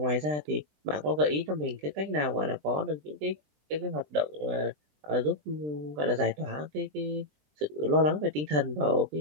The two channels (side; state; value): left; late; 20 ms